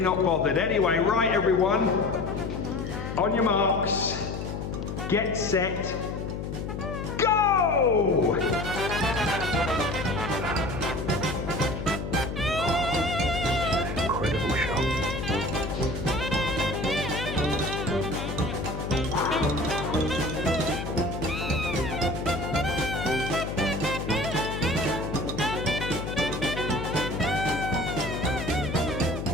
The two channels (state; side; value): noise; left; hum, 5 dB below the sound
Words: bothered. Anyway, right everyone, on your marks, get set, go! Incredible shot.